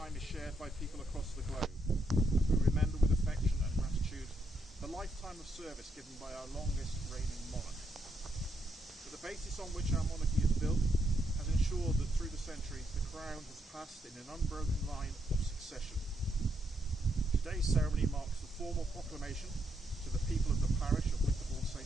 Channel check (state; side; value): normal; both; correlation 0.77